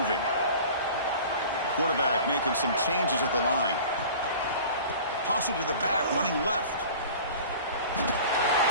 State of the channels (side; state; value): both; inverted; correlation -0.41